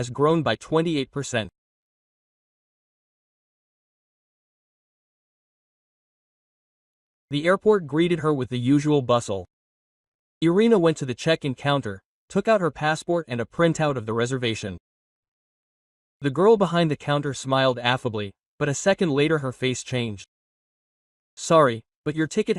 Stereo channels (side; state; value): both; identical; correlation 1.00